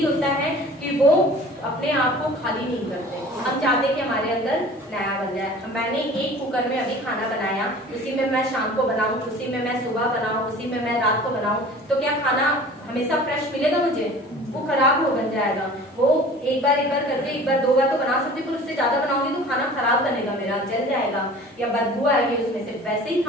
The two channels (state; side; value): normal; both; correlation 0.44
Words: होता है कि वो अपने आप को खाली नहीं करते। हम चाहते हैं कि हमारे अंदर नया बन जाए। मैंने एक कुकर में अभी खाना बनाया, उसी में मैं शाम को बनाऊं, उसी में मैं सुबह बनाऊं, उसी में मैं रात को बनाऊं, तो क्या खाना हमेशा फ्रेश मिलेगा मुझे? वो खराब हो बन जाएगा। वो एक बार करके, एक बार दो बार तो बना सकती, पर उससे ज्यादा बनाऊंगी तो खाना खराब बनेगा मेरा, जल जाएगा या बदबू आएगी उसमें से। वैसे ही